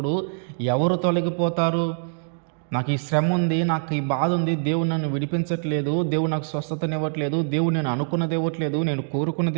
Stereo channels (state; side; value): silent; left; 63 dB below the other